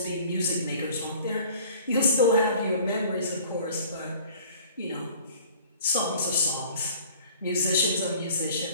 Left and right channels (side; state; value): both; inverted; correlation -0.49